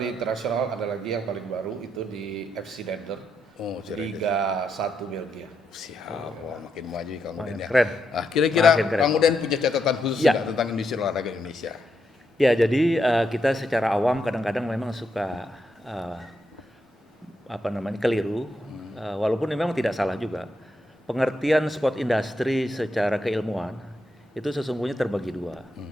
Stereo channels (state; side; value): normal; both; correlation 0.81